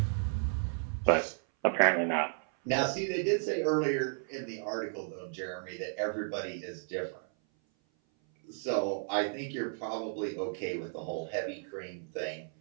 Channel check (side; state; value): left; silent; 56 dB below the other